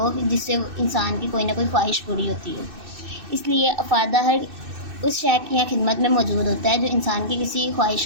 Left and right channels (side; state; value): left; late; 2.6 ms